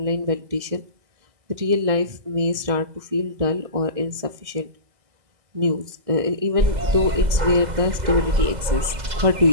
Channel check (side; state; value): left; late; 2.0 ms